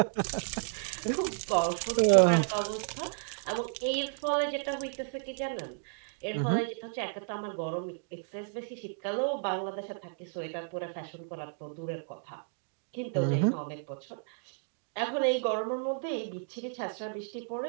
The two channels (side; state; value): left; silent; digital silence